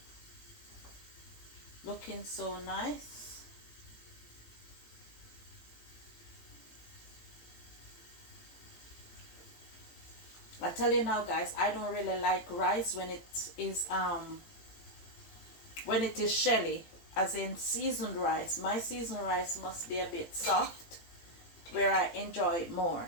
Looking so nice. I tell you now guys, I don't really like rice when it is shelly, as in seasoned rice. My seasoned rice must be a bit soft where I enjoy it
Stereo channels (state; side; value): late; right; 18 ms